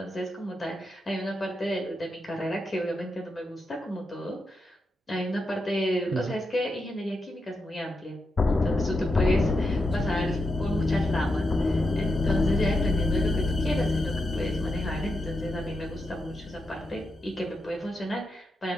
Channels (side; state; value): both; normal; correlation 0.86